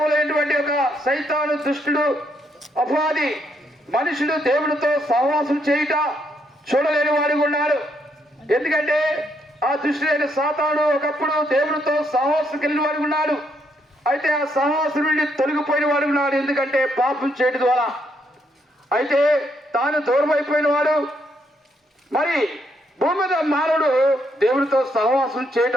ఒక సైతాను దుష్టుడు అపవాది మనుషుడు దేవుడితో సహవాసం చేయుట చూడలేని వాడు ఉన్నాడు. ఎందుకంటే ఆ దుష్టుడైన సాతాను ఒకప్పుడు దేవుడితో సహవాసం కలిగిన వాడు ఉన్నాడు. అయితే ఆ సహవాసం నుండి తొలగిపోయిన వాడు ఉన్నాడు. ఎందుకంటే పాపం చేయడం ద్వారా. అయితే తాను దూరం అయిపోయిన వాడు. మరి భూమి మీద మానవుడు దేవుడితో సహవాసం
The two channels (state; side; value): normal; both; correlation 0.75